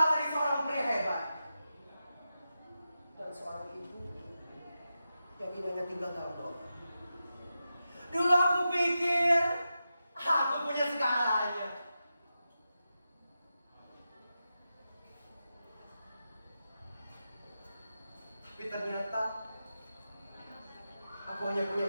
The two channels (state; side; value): inverted; both; correlation -0.90